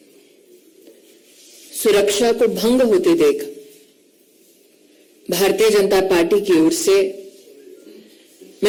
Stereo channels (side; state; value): both; identical; correlation 1.00